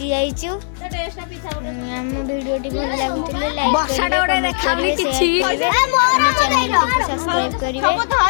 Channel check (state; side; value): silent; right; digital silence